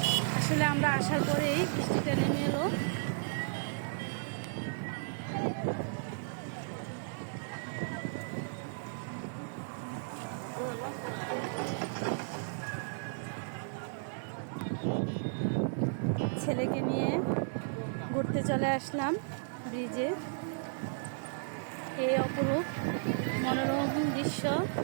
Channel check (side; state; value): left; silent; 55 dB below the other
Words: আসলে আমরা আসার পরেই বৃষ্টিটা নেমে এলো। ছেলেকে নিয়ে ঘুরতে চলে আসলাম ব্রিজে। এই অপরূপ মনোরম দৃশ্য